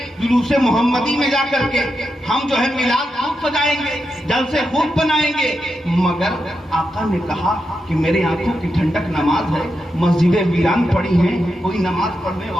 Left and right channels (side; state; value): both; normal; correlation 0.87